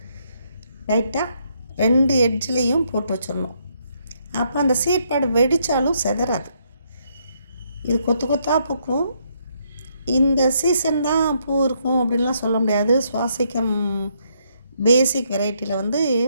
லைட்டாக 2 எட்ஜ்லேயும் போட்டு வச்சிடணும். அப்போ அந்த சீட் பேடு வெடித்தாலும் செதறாது. இது கொத்து கொத்தாக பூக்கும். இந்த சீசன் தான் பூ இருக்கும் அப்படின்லாம் சொல்ல முடியாது. சுவாசிக்கம் பேசிக் வெரைட்டியில் வந்து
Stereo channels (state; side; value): inverted; both; correlation -0.73